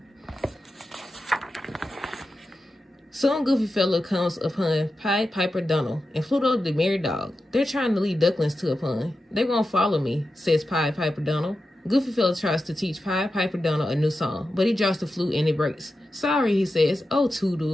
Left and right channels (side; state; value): both; normal; correlation 0.91